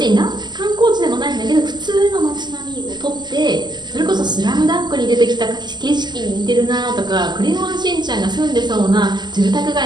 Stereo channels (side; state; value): left; late; 0.21 ms